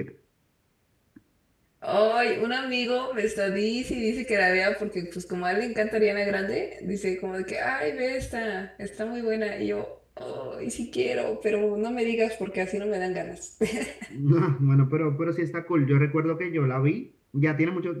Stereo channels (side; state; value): both; identical; correlation 1.00